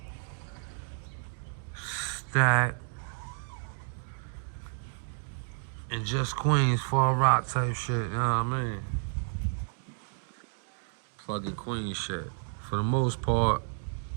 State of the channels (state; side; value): silent; left; digital silence